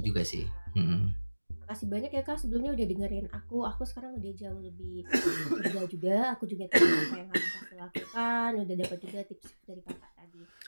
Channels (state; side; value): inverted; both; correlation -1.00